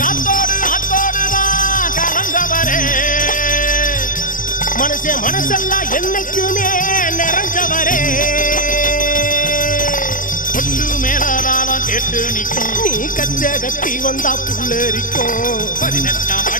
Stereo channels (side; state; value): right; late; 0.39 ms